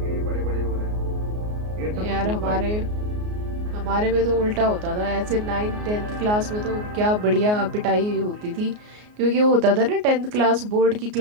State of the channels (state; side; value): late; left; 33 ms